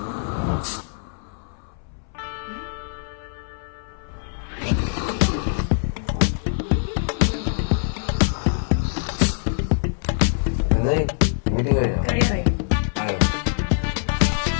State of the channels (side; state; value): right; silent; 63 dB below the other